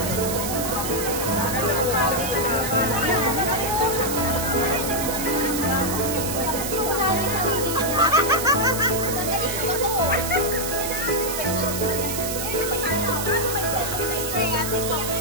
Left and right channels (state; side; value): noise; right; hiss, 4 dB below the sound